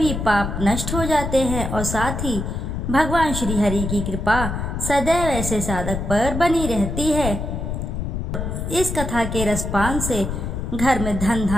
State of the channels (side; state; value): left; noise; rumble, 4 dB below the sound